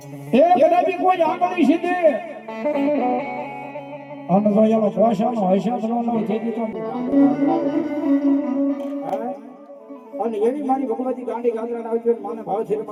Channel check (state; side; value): identical; both; correlation 1.00